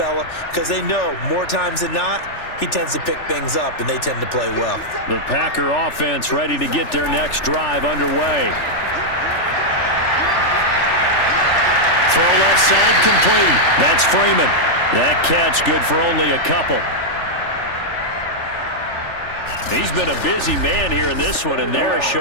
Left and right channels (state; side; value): late; right; 3.4 ms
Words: Because they know more times than not, he tends to pick things up, and they tend to play well. The Packer offense ready to get their next drive underway. Throw left side complete. That's Freeman. That catch good for only a couple. He's been a busy man here in this one, and they're